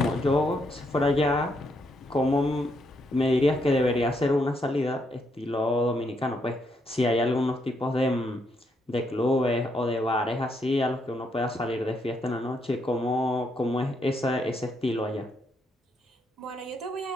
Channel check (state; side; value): normal; both; correlation 0.77